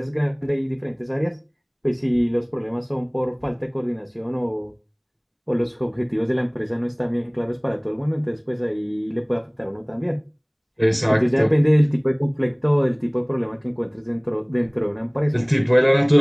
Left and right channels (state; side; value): identical; both; correlation 1.00